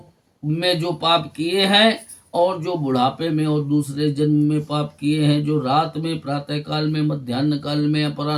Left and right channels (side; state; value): both; identical; correlation 1.00